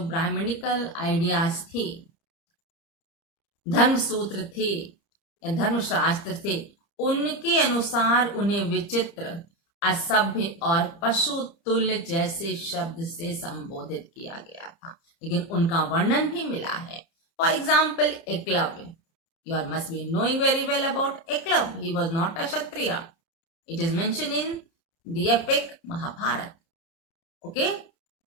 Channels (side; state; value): right; late; 30 ms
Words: ब्राह्मणिकल आइडियाज थे, धर्म सूत्र थे, धर्मशास्त्र थे, उनके अनुसार उन्हें विचित्र, असभ्य और पशु तुल्य जैसे शब्द से संबोधित किया गया था, लेकिन उनका वर्णन भी मिला है। For example Eklavya, you all must be knowing very well about Eklavya. He was not a Kshatriya. It is mentioned in the epic Mahabharata. Okay?